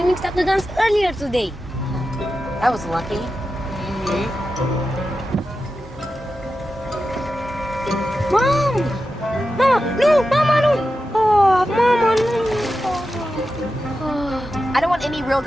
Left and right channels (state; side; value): normal; both; correlation 0.91